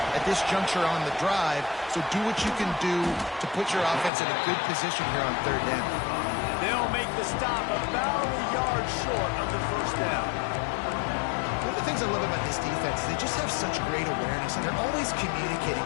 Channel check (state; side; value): drops out; right; at 4.1 s